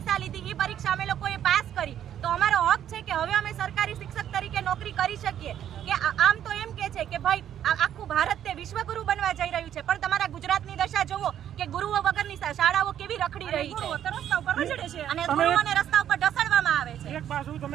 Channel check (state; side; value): quieter; left; 10.4 dB